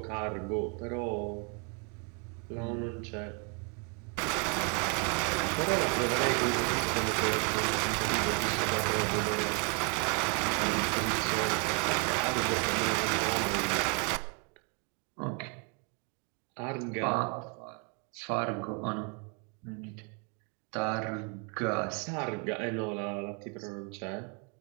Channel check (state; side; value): quieter; left; 36.2 dB